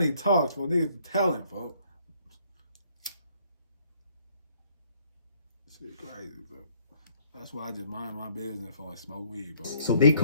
talks, folks, niggas be telling, folks. Shit crazy, bro. That's why I just mind my business before I smoke weed, bro. So they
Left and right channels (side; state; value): both; inverted; correlation -0.64